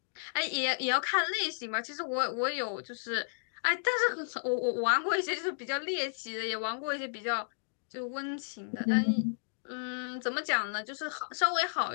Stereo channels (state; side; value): silent; right; digital silence